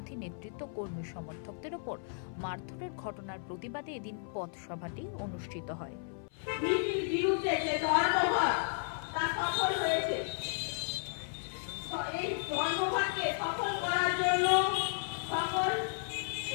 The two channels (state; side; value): silent; right; 55 dB below the other